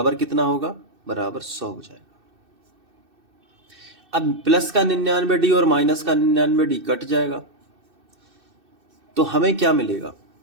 कितना होगा, बराबर 100 हो जाएगा। अब प्लस का 99D और माइनस का 99D कट जाएगा, तो हमें क्या मिलेगा,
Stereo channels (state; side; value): late; left; 2.6 ms